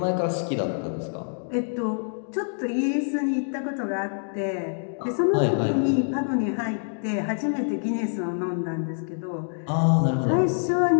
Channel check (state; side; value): silent; right; digital silence